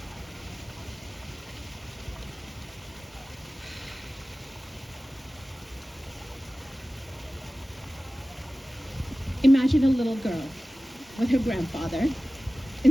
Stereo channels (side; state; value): both; normal; correlation 0.96